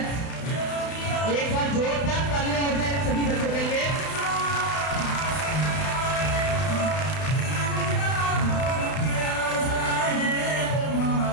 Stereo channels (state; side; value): late; right; 32 ms